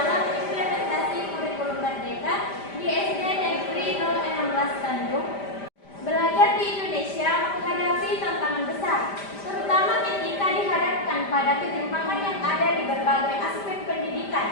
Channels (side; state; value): right; late; 5.0 ms